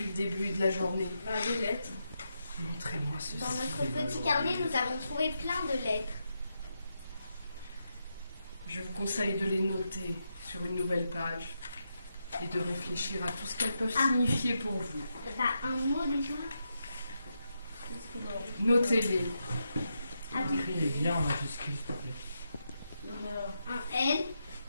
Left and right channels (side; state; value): both; inverted; correlation -0.84